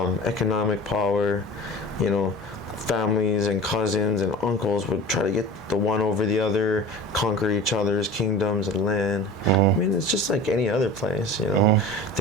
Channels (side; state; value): both; normal; correlation 0.37